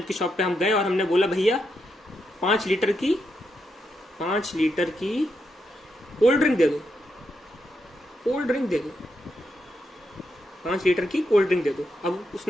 की शॉप पे हम गए और हमने बोला भैया 5 लीटर की कोल्ड ड्रिंक दे दो, 5 लीटर की कोल्ड ड्रिंक दे दो। अब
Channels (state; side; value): normal; both; correlation 0.82